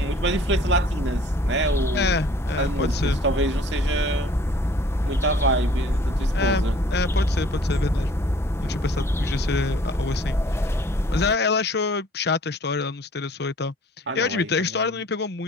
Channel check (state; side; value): normal; both; correlation 0.53